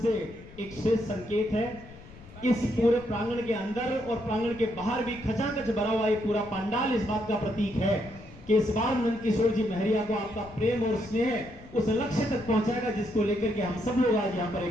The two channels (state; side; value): noise; left; rumble, 19 dB below the sound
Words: एक श्रेष्ठ संकेत है। इस पूरे प्रांगण के अंदर और प्रांगण के बाहर भी खचाखच भरा हुआ ये पूरा पंडाल इस बात का प्रतीक है कि इस बार नंद किशोर जी महरिया को आपका प्रेम और स्नेह उस लक्ष्य तक पहुंचाएगा जिसको लेकर के हम सब लोग आज यहाँ पर